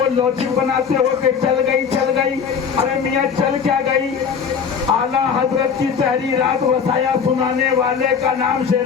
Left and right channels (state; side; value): quieter; right; 6.6 dB